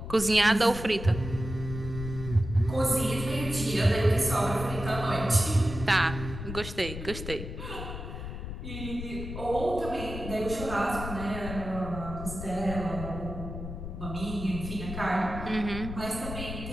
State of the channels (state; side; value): noise; left; rumble, 8 dB below the sound